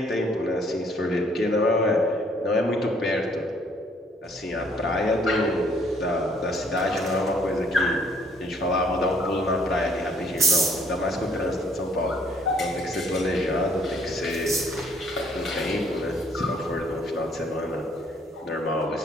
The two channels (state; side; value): normal; both; correlation 0.63